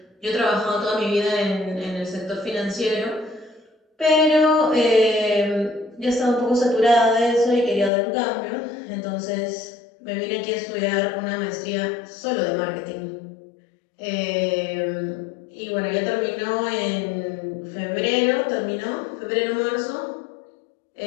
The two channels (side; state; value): right; drops out; at 7.9 s